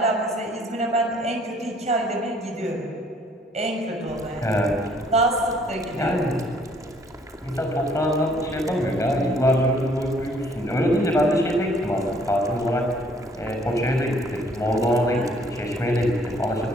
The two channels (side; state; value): both; normal; correlation 0.62